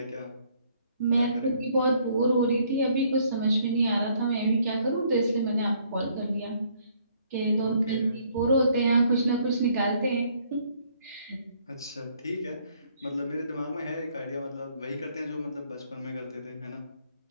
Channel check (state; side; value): inverted; both; correlation -0.65